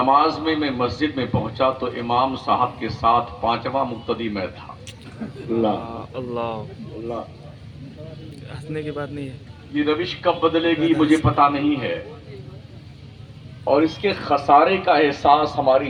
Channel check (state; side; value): identical; both; correlation 1.00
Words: میں مسجد میں پہنچا تو امام صاحب کے ساتھ پانچواں مقتدی میں تھا۔ اللہ اللہ ہنسنے کی بات نہیں ہے۔ یہ روش کب بدلے گی مجھے پتا نہیں ہے، اور اس کے خسارے کا احساس ہماری